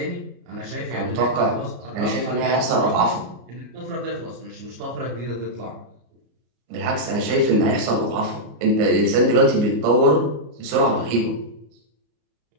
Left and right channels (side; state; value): left; late; 34 ms